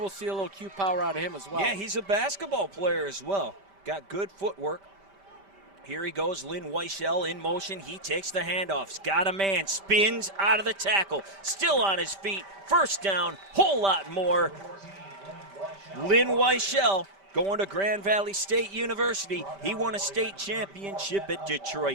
see a little Q power out of him as well. Yeah, he's a basketball player as well. Got good footwork. Here he goes, Lynn Weichel in motion. He takes the handoffs. Got a man, spins out of the tackle. Still on his feet. First down, whole lot more. Lynn Weichel going to Grand Valley State University. He won a state championship at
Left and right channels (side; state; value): left; late; 5.1 ms